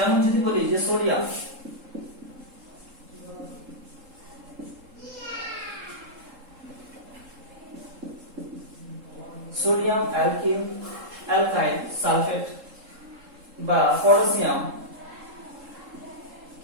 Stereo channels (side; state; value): left; late; 3.7 ms